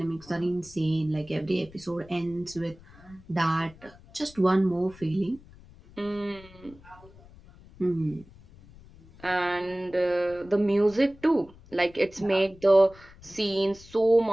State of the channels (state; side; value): noise; left; rumble, 23 dB below the sound